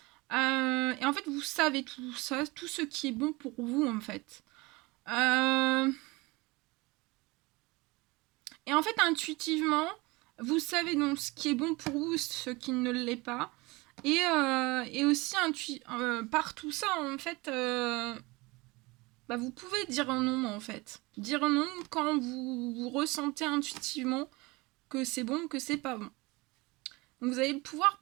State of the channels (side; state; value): left; quieter; 23.7 dB